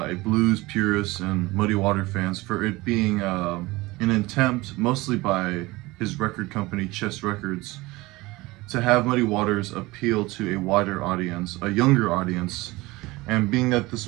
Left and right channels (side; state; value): left; quieter; 21.1 dB